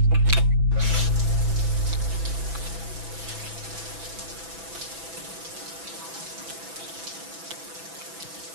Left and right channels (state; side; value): late; left; 6.0 ms